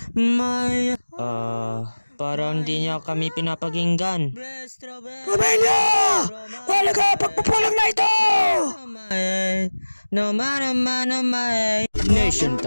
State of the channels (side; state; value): both; inverted; correlation -1.00